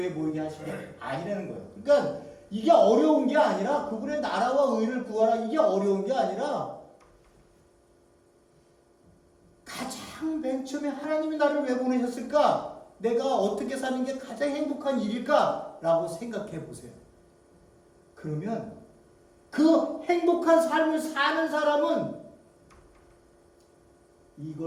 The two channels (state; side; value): identical; both; correlation 1.00